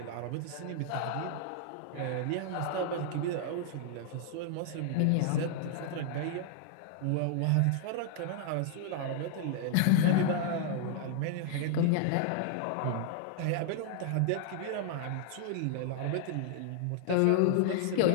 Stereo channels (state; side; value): different; both; correlation 0.00